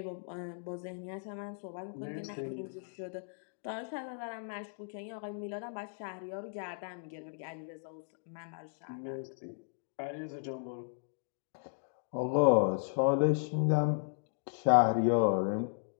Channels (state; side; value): silent; right; digital silence